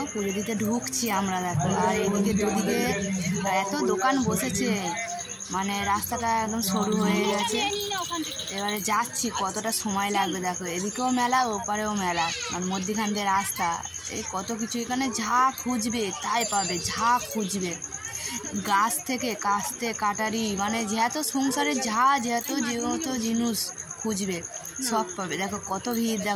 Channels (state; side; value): identical; both; correlation 1.00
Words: পুজো দিতে ঢুকছি আমরা দেখো। আর এদিকে দুদিকে এত দোকান বসেছে, মানে রাস্তাটা একদম সরু হয়ে গেছে। এবারে যাচ্ছি, কতটা সময় লাগবে দেখো। এদিকেও মেলা, ওপারেও মেলা, আর মধ্যখান দিয়ে রাস্তা। এই কত কিছু, এখানে যা খুঁজবে তাই পাবে, যা খুঁজবে। গাছ থেকে কাস্তে কাটারি, মানে যত সংসারে যত জিনিস খুঁজবে সব পাবে। দেখো কত ভিড়